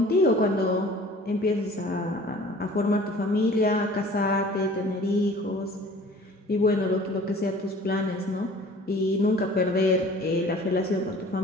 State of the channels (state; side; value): normal; both; correlation 0.48